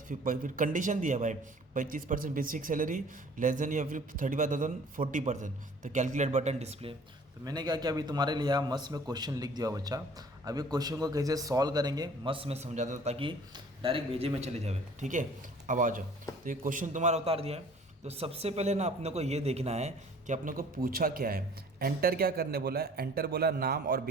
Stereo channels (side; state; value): both; normal; correlation 0.51